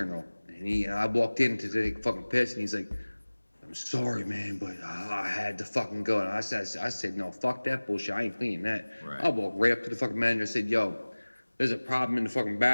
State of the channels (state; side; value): inverted; both; correlation -1.00